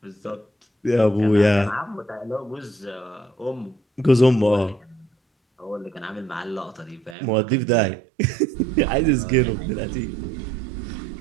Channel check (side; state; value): left; drops out; at 7.2 s